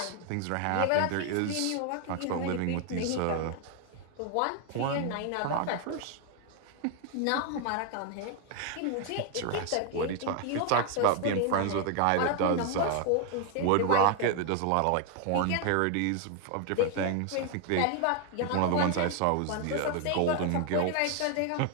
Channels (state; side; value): different; both; correlation 0.01